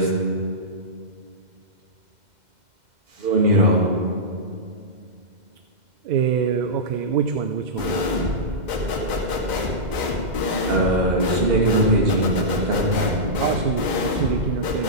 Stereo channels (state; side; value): late; left; 2.1 ms